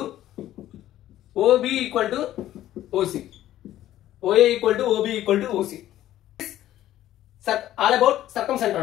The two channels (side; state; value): right; quieter; 13.4 dB